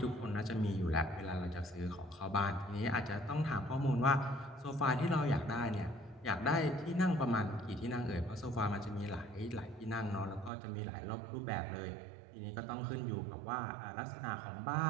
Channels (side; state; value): left; drops out; at 10.5 s